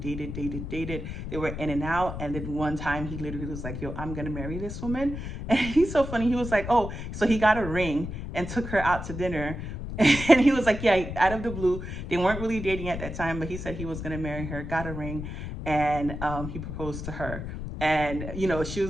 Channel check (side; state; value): left; noise; rumble, 7 dB below the sound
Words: They were in and out. And then one time he literally was like, yo, I'm going to marry this woman. And he's so funny. He was like, oh, so he got a ring and took her out to dinner. And he was like, yeah, out of the blue. They weren't really dating at that time, but he said he was going to marry her, got a ring, and he proposed to her. And, she